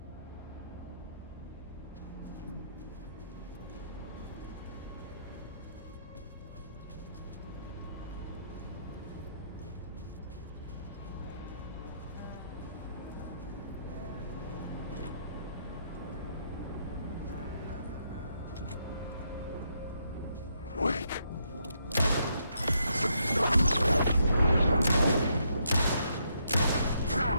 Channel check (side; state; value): both; inverted; correlation -0.76